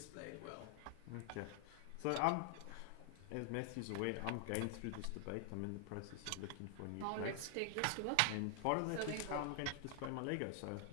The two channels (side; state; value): both; different; correlation 0.00